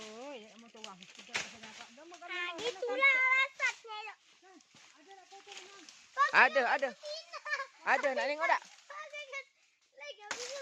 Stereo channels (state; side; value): identical; both; correlation 1.00